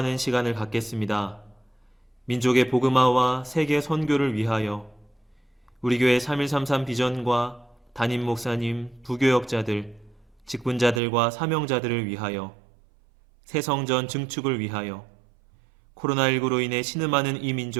시간을 갖겠습니다. 민족의 복음화와 세계 선교를 위하여 우리 교회 3133 비전과 담임 목사님, 부교역자들, 직분자들과 사명자들을 위하여 새성전 증축을 위하여 코로나19로 인해 신음하는 이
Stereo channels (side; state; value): left; drops out; at 11.0 s